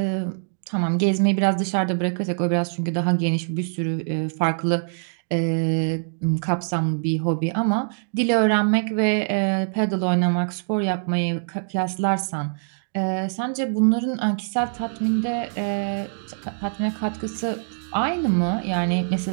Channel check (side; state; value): left; silent; digital silence